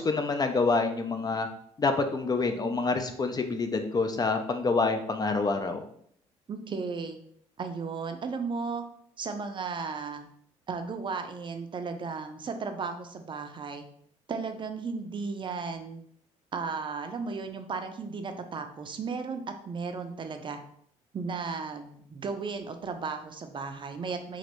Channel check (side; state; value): both; normal; correlation 0.53